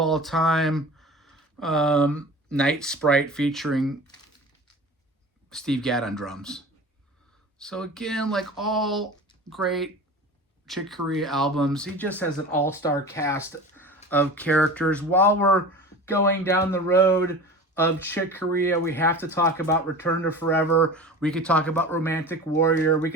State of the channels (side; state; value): both; normal; correlation 0.35